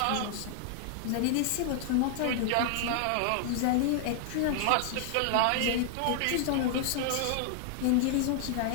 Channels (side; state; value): both; different; correlation 0.00